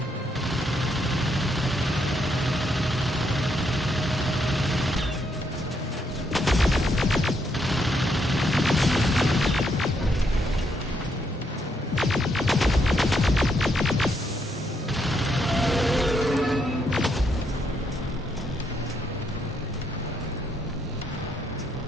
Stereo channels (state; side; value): normal; both; correlation 0.76